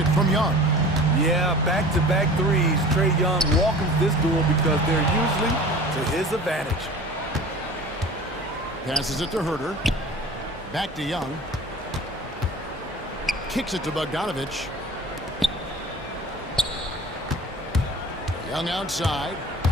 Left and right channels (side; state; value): both; normal; correlation 0.40